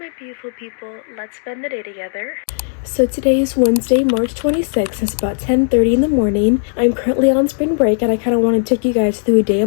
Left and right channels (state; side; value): silent; right; digital silence